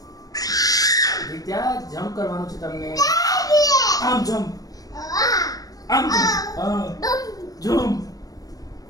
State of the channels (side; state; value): right; late; 0.18 ms